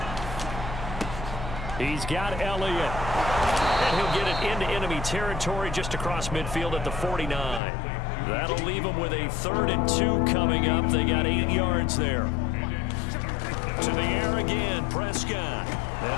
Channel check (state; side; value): drops out; right; at 7.6 s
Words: He's got Elliott. And he'll get it into enemy territory just across midfield at the 49. That'll leave him with a 3rd and 2 coming up. They got 8 yards there. To the air again, Prescott.